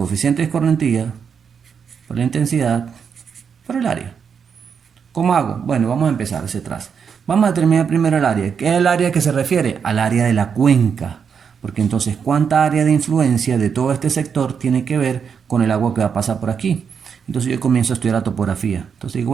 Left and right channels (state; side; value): quieter; left; 6.7 dB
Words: de escorrentía por la intensidad por el área. ¿Cómo hago? Bueno, vamos a empezar hacia atrás. Vamos a determinar primero el área. ¿Qué es el área que se refiere? Al área de la cuenca. Porque entonces, ¿cuánta área de influencia de todo este sector tiene que ver con el agua que va a pasar por aquí? Entonces yo comienzo a estudiar la topografía. Entonces digo,